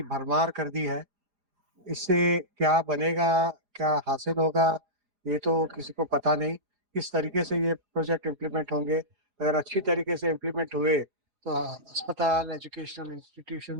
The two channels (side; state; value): left; late; 5.0 ms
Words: भरमार कर दी है। इससे क्या बनेगा, क्या हासिल होगा, ये तो किसी को पता नहीं। किस तरीके से ये प्रोजेक्ट इम्प्लीमेंट होंगे। अगर अच्छी तरीके से इम्प्लीमेंट हुए तो अस्पताल, एजुकेशनल